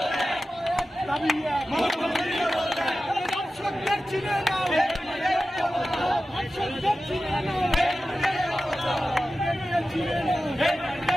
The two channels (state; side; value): normal; both; correlation 0.94